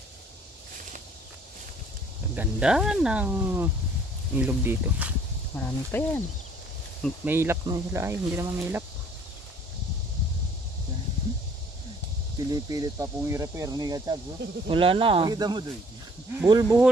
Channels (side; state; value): both; normal; correlation 0.58